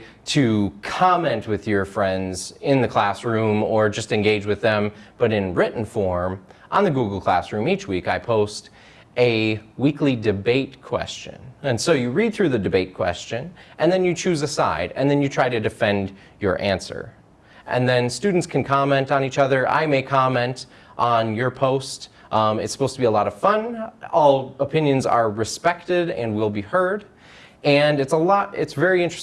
to comment with your friends in the classroom or just engage with them, but in written form, on the Google Classroom each week I post a weekly debate question. And so you read through the debate question, and then you choose a side, and then you try to defend your answer. And then students can comment on each other. I may comment on your post. It's supposed to be a lot of fun. All opinions are respected and will be heard. And it's very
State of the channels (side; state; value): both; identical; correlation 1.00